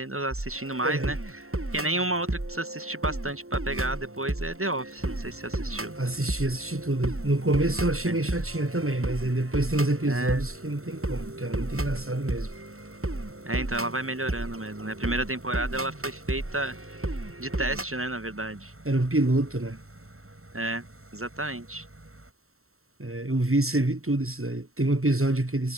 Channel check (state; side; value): late; left; 0.63 ms